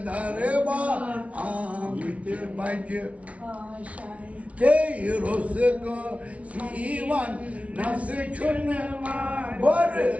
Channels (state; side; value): late; left; 0.065 ms